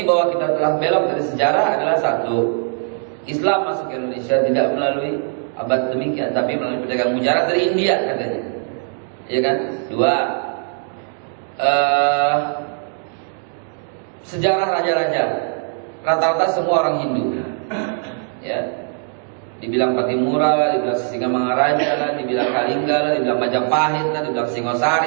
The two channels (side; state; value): left; silent; 56 dB below the other